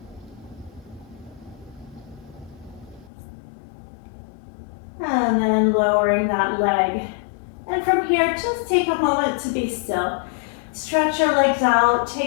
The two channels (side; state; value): right; drops out; at 3.1 s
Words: And then lowering that leg. And from here, just take a moment to be still. Stretch your legs out,